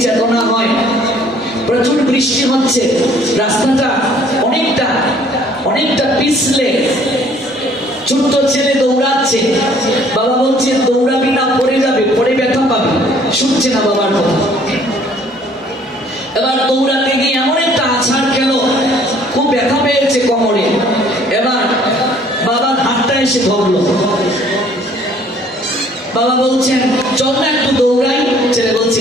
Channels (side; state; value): both; normal; correlation 0.58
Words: চেতনা হয়। প্রচুর বৃষ্টি হচ্ছে, রাস্তাটা অনেকটা পিছলে, ছোট্ট ছেলে দৌড়াচ্ছে, বাবা বলছে দৌড়াবি না, পড়ে যাবে, পড়ে ব্যথা পাবে, শুনছে না বাবার কথা। এবার দৌড়াতে গিয়ে এমন একটা আছাড় খেলো, খুব ব্যথা পেয়েছে কোমরে। এবার বাবার হাতটা এসে ধরলো। বাবা বলছেন, চল না একটু দৌড়াই। ছেলে বলছে,